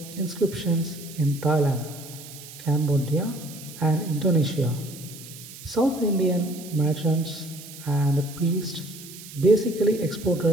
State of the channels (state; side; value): noise; right; hiss, 15 dB below the sound